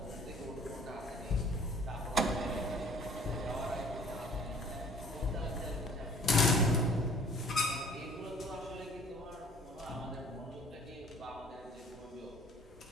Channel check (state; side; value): normal; both; correlation 0.53